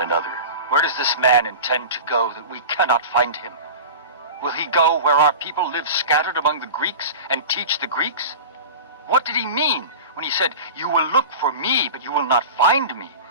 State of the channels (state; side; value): inverted; both; correlation -0.32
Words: another, "Where does this man intend to go that we cannot find him? Will he go where our people live scattered among the Greeks and teach the Greeks? What did he mean when he said, 'You will look for me, but you will not find me,'